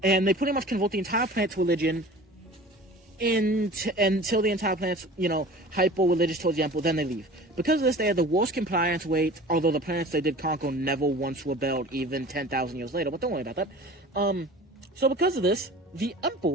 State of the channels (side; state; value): both; normal; correlation 0.41